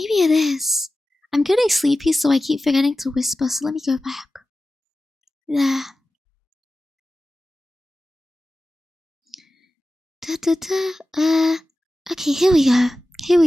it is. I'm getting sleepy, so I keep forgetting to whisper. So let me go back. Yeah. Okay, here we go.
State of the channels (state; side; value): normal; both; correlation 0.95